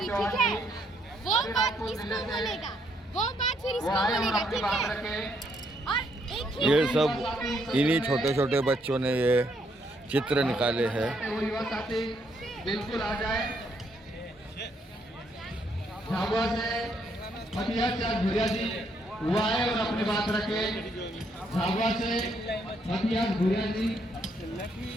ठीक है? वो बात इसको बोलेगा, वो बात फिर इसको बोलेगा, ठीक है? और एक ही ये सब इन्हीं छोटे छोटे बच्चों ने ये चित्र निकाले हैं। युवा साथी बिल्कुल आ जाए। झाबुआ से मटिया चाँद भुरिया जी वो आए और अपनी बात रखे। झाबुआ से मटिया भुरिया जी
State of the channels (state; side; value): normal; both; correlation 0.73